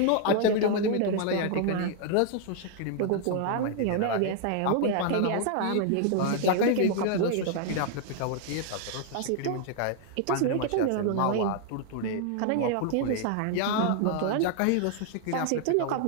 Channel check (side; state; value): both; different; correlation 0.00